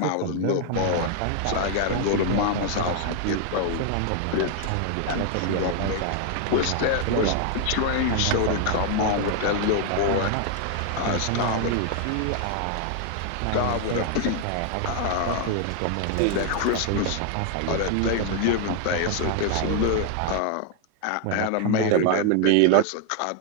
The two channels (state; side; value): different; both; correlation 0.00